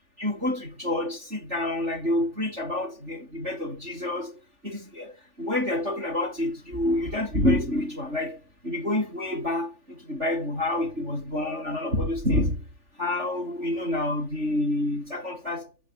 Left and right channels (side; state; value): left; late; 3.4 ms